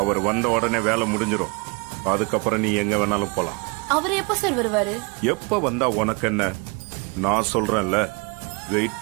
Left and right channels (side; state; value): left; quieter; 30.9 dB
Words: அவர் வந்த உடனே வேலை முடிஞ்சிடும். அதுக்கப்புறம் நீ எங்க வேணாலும் போலாம். அவர் எப்ப சார் வருவாரு? எப்ப வந்தா உனக்கு என்ன? நான் சொல்றேன்ல, வெயிட்